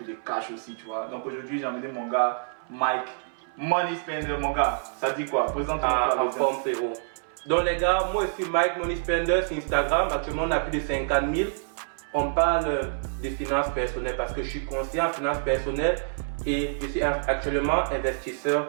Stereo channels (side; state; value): left; silent; 58 dB below the other